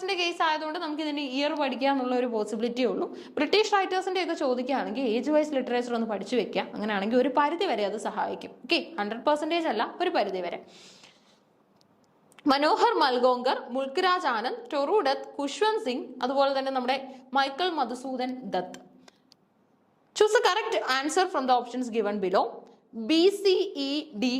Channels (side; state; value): both; identical; correlation 1.00